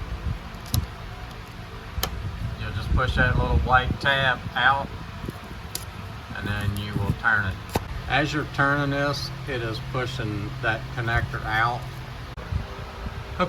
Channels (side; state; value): both; identical; correlation 1.00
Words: You'll just push that little white tab out and then you will turn it. As you're turning this, it is pushing that connector out.